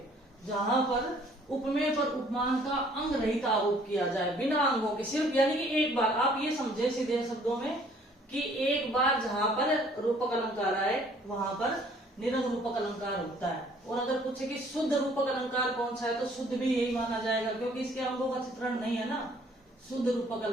जहां पर उपमेय पर उपमान का अंग रहित आरोप किया जाए, बिना अंगों के, सिर्फ यानी कि एक बार। आप ये समझे सीधे शब्दों में कि एक बार जहां पर रूपक अलंकार आए वहां पर निरंग रूपक अलंकार होता है। और अगर पूछे कि शुद्ध रूपक अलंकार कौन सा है, तो शुद्ध भी यही माना जाएगा, क्योंकि इसके अंगों का चित्रण नहीं है ना। शुद्ध रूपक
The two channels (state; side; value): normal; both; correlation 0.58